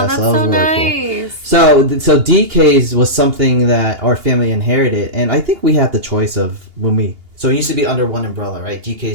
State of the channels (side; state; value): left; late; 2.8 ms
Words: that's so nice. Cool. So DK's was something that our family inherited, and I think we had the choice of when we... So it used to be under one umbrella, right?